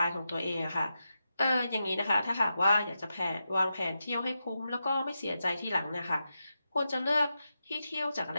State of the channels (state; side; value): inverted; both; correlation -0.88